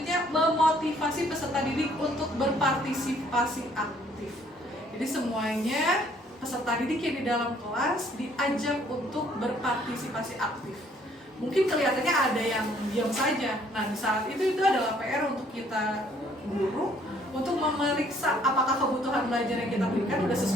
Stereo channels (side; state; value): both; normal; correlation 0.62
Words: memotivasi peserta didik untuk berpartisipasi aktif. Jadi semuanya peserta didik yang di dalam kelas diajak untuk berpartisipasi aktif. Mungkin kelihatannya ada yang diam saja. Nah, di saat itu adalah PR untuk kita guru untuk memeriksa apakah kebutuhan belajar yang kita berikan sudah